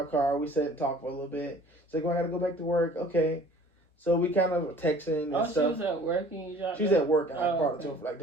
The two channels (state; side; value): normal; both; correlation 0.50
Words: car. We sat and talked for a little bit. She's like, well, I got to go back to work. Okay. So we kind of were texting and stuff. She was at work and you dropped She was at work and I brought her to her like